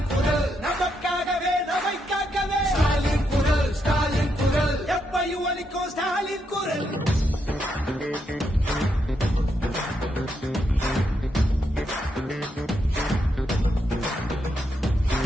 குரல் நமக்காகவே நம்மை காக்கவே ஸ்டாலின் குரல் எப்பையும் ஒலிக்கும் ஸ்டாலின் குரல்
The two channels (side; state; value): both; normal; correlation 0.80